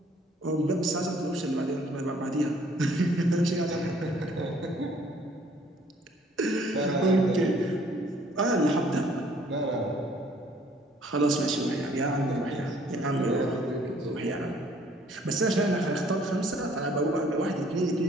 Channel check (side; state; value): both; normal; correlation 0.60